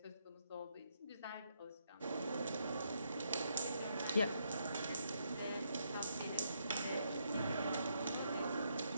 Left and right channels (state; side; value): inverted; both; correlation -0.76